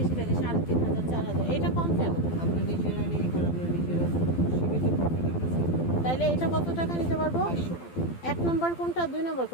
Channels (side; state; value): right; late; 12 ms